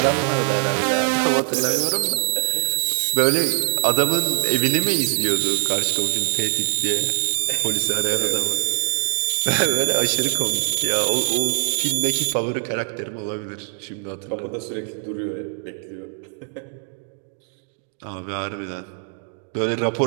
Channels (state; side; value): silent; left; 60 dB below the other